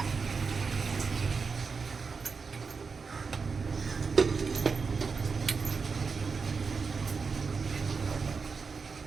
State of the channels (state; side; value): quieter; left; 5.0 dB